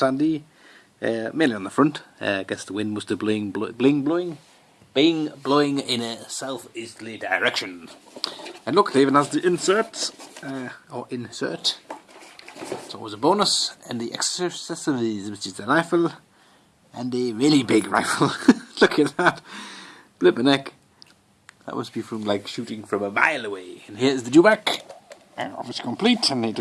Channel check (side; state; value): both; identical; correlation 1.00